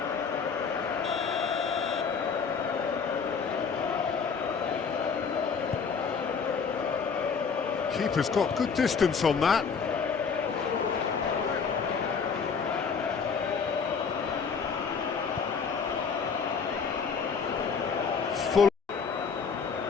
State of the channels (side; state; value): right; quieter; 5.8 dB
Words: Keeper's got good distance on that. Full.